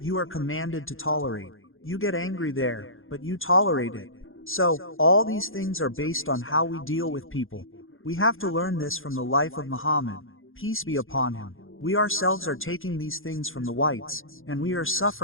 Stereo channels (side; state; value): right; late; 0.59 ms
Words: you are commanded to tolerate. You get angry there, but you tolerate it. So, all these things are based on how we deal with people. We have to learn this from the life of Muhammad, peace be upon him. We ourselves are taking these things from the whites, and we are